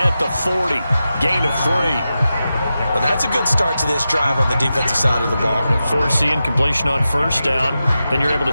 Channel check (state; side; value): inverted; both; correlation -0.91